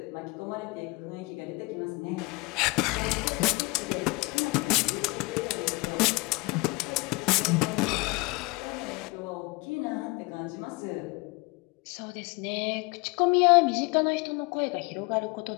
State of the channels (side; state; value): right; quieter; 26.3 dB